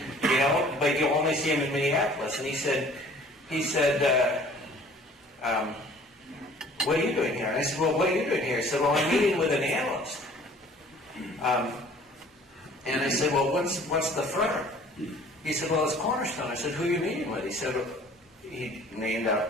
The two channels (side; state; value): both; normal; correlation 0.52